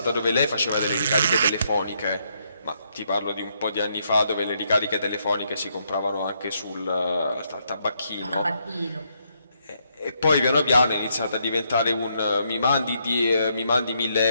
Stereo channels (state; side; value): inverted; both; correlation -0.75